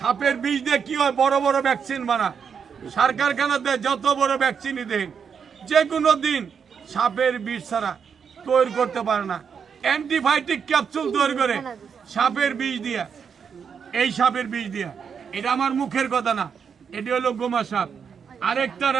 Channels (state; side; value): quieter; left; 6.7 dB